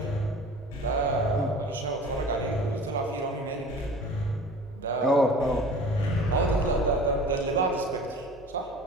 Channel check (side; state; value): both; normal; correlation 0.42